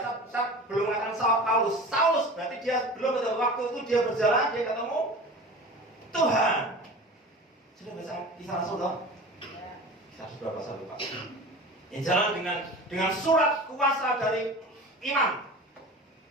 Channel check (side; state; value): both; normal; correlation 0.36